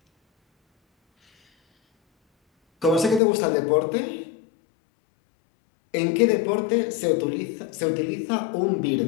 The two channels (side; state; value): right; drops out; at 3.2 s